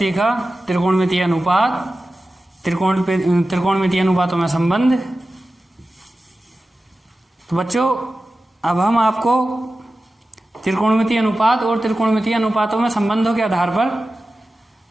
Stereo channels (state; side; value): normal; both; correlation 0.94